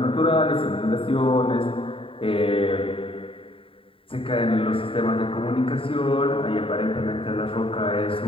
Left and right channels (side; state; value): right; late; 0.26 ms